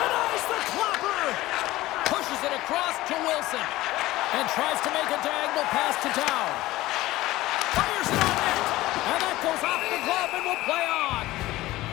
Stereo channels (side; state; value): right; quieter; 17.4 dB